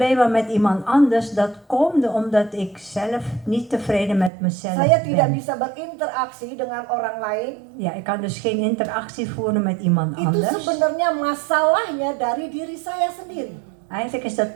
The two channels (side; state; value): left; drops out; at 4.3 s